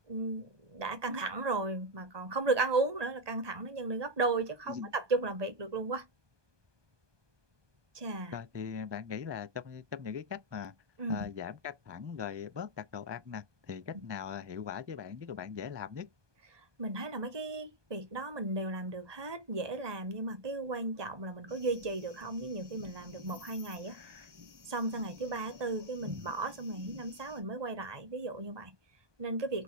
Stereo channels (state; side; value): late; left; 1.2 ms